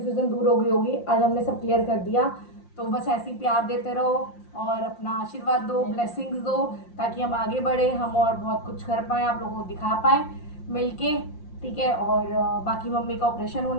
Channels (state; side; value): late; right; 5.7 ms